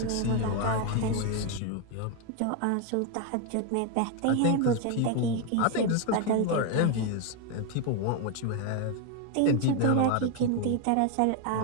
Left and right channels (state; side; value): different; both; correlation 0.01